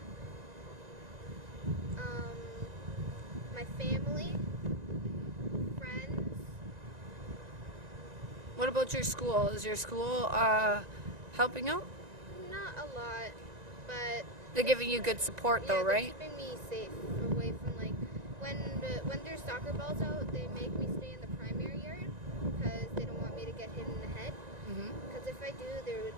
my family, friends. What about your school? Is your school helping out? Not a lot, but They're giving you good support though, they're right? keeping me safe away from when there's soccer balls out, they make me stay in the primary yard because they don't want me to get hit in the head. Because if I do, there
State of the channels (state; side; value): late; left; 1.9 ms